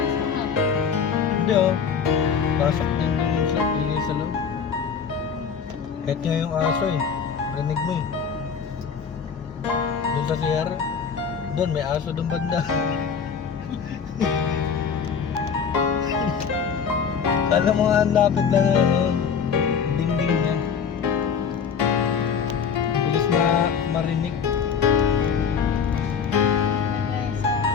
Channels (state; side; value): quieter; right; 6.6 dB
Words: sa Hindi oh. Pasok din dun sa ili sa loob. Kahit nga yung aso eh. Rinig mo eh. Dun sa CR. Dun may aso dun banda. Kala mo nga ang lapit lang ng ano, dingding niya. Bilis marinig.